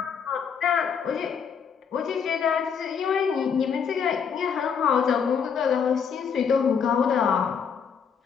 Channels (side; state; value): right; quieter; 6.8 dB